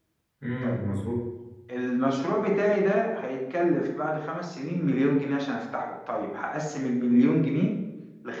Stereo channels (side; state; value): both; identical; correlation 1.00